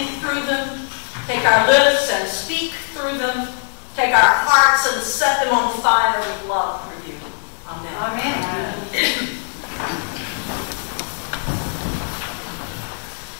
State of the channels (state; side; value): silent; right; 58 dB below the other